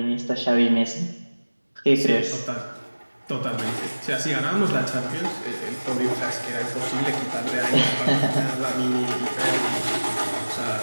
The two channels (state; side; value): inverted; both; correlation -1.00